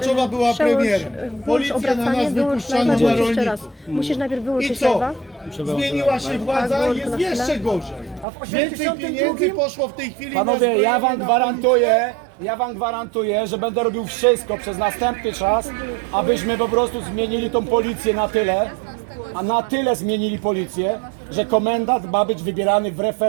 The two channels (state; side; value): drops out; left; at 8.2 s